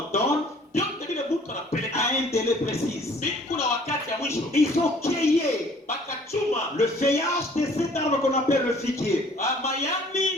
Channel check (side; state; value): both; normal; correlation 0.55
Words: donne a un délai précis. Ils ont cueilli le feuillage de cet arbre qu'on appelle le figuier.